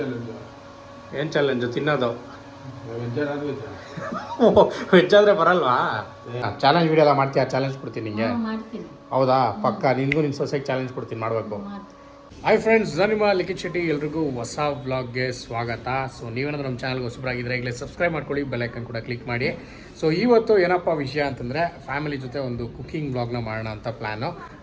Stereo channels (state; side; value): identical; both; correlation 1.00